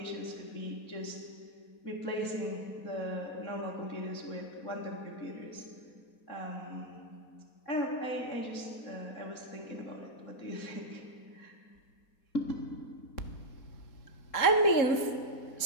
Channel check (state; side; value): late; right; 4.2 ms